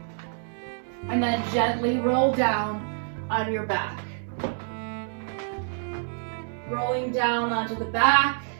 And then gently roll down on your back. Rolling down onto the back.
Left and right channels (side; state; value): left; silent; digital silence